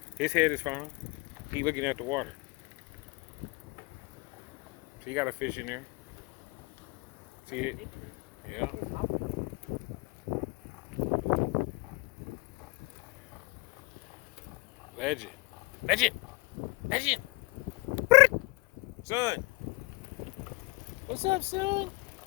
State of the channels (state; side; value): quieter; right; 25.1 dB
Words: His head is fine. He looking at the water. So you got a fish in there. See it? Yeah. Legend. Legend. Legend. Son. What's up, son?